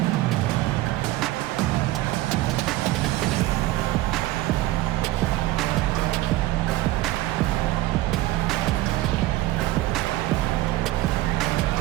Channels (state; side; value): quieter; left; 16.7 dB